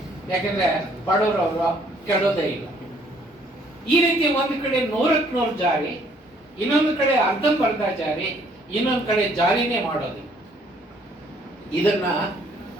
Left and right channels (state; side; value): normal; both; correlation 0.63